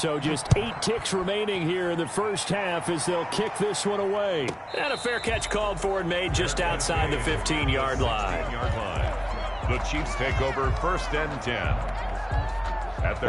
just 8 ticks remaining here in the first half as they'll kick this one away. And a fair catch called for and made just outside the 15-yard line. The Chiefs take over 1st and 10.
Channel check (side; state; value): both; identical; correlation 1.00